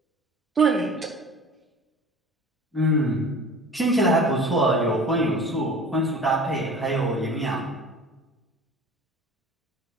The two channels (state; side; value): normal; both; correlation 0.41